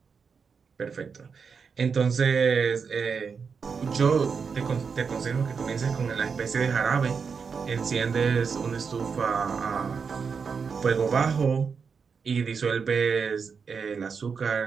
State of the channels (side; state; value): left; quieter; 5.7 dB